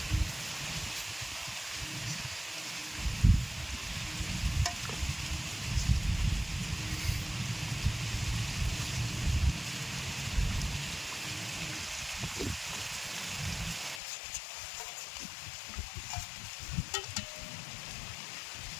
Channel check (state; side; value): drops out; right; at 14.0 s